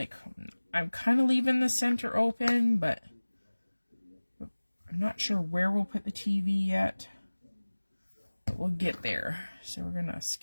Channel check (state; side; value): inverted; both; correlation -1.00